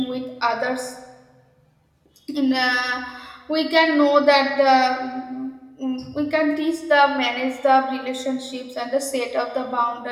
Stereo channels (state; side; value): identical; both; correlation 1.00